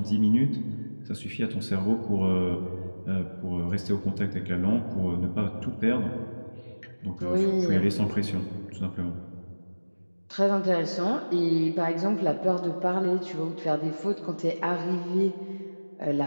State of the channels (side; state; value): both; inverted; correlation -1.00